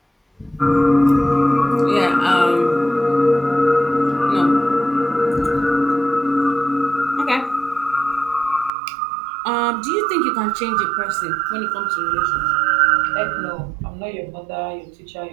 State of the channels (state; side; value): drops out; left; at 8.7 s